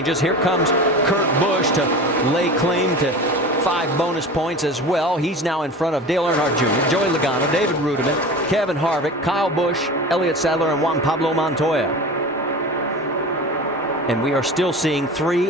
Here comes Kurt Busch to lay claim to 5 bonus points as well. He's now in front of Dale Earnhardt Jr., Joey Logano, David Rudiman, Kevin Harvick, Kyle Busch, Elliott Sadler, and Juan Pablo Montoya. And we are still seeing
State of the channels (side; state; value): both; normal; correlation 0.34